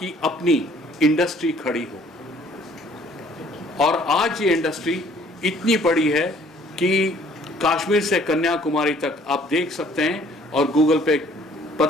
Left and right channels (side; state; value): both; normal; correlation 0.58